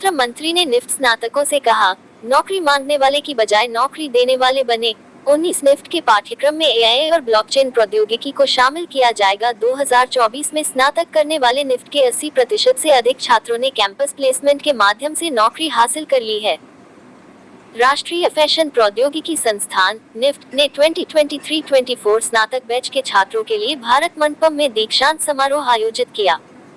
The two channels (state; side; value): identical; both; correlation 1.00